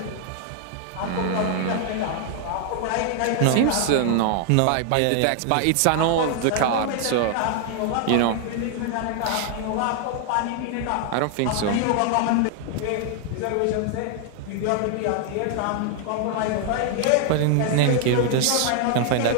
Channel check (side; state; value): both; different; correlation 0.00